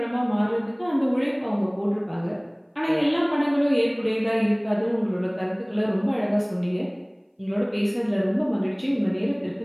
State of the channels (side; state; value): both; identical; correlation 1.00